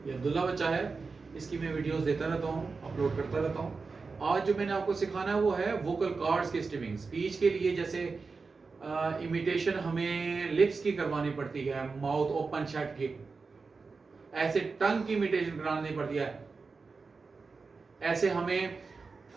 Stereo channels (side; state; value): left; quieter; 4.4 dB